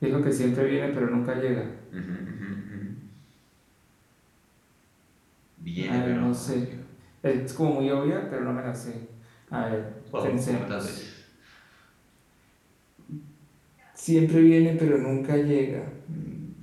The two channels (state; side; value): identical; both; correlation 1.00